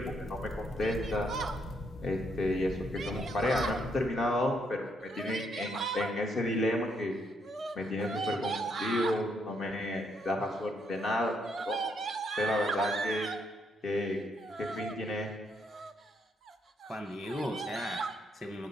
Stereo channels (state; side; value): normal; both; correlation 0.74